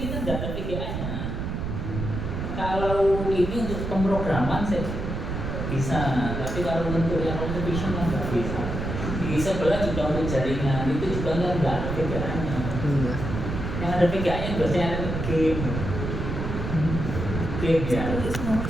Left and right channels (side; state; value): right; noise; rumble, 4 dB below the sound